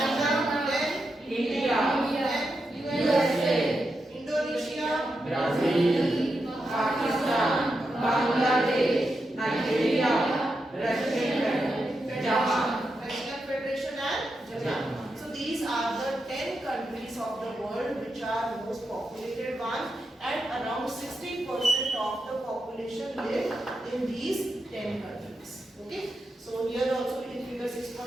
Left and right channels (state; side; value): normal; both; correlation 0.87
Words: Then India. then USA. Indonesia, Brazil. Pakistan. Bangladesh. Nigeria. Russia. Japan. Russian Federation and Japan. So these are the 10 countries of the world which are most populated ones, and around 60% of the population live in these 10 countries. Okay. So here also in figure